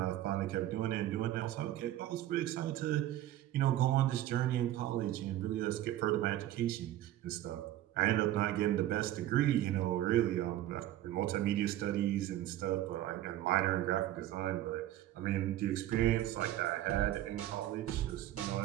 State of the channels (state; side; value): quieter; left; 13.6 dB